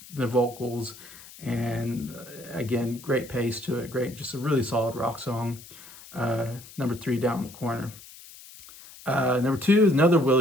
vocals, and again, great pace to it. Great, just a really solid rock song. Number 3, Down the Corner. Number 2 is another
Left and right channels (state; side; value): noise; left; hiss, 18 dB below the sound